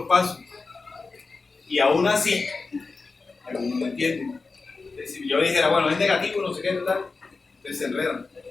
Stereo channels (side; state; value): right; quieter; 4.1 dB